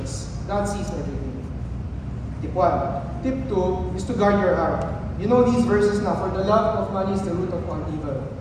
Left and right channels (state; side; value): identical; both; correlation 1.00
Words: God sees everything. Tip 1. Tip 2 is to guard your heart. You know these verses na, for the love of money is the root of all evil.